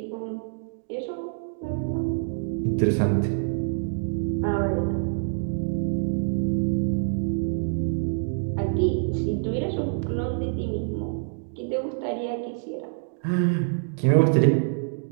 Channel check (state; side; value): silent; left; digital silence